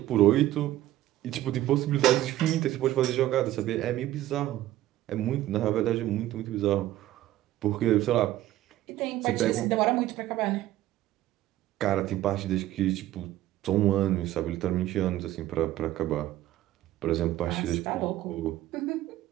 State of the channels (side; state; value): left; quieter; 14.4 dB